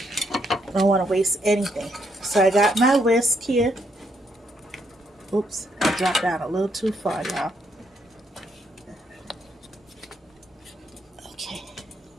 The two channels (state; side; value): normal; both; correlation 0.74